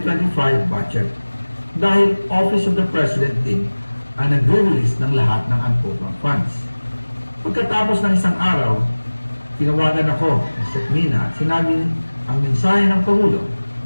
budget dahil Office of the President din ang nag-release ng lahat ng unprogram funds. Pagkatapos ng isang araw, tinawagan ako ng Sekmina at sinabi ang mensahe ng Pangulo,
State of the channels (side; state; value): both; inverted; correlation -1.00